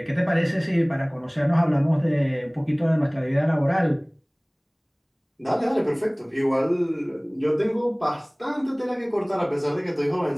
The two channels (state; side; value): identical; both; correlation 1.00